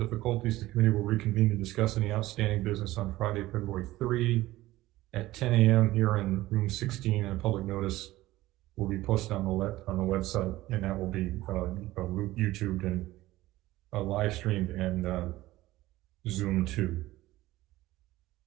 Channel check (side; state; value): left; quieter; 17.1 dB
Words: the committee will reconvene to discuss any outstanding business on Friday, February 3 at 10 a.m. here in room 16, and a public notice will be posted on the website, and that will be YouTubed and live streamed and Zoom too.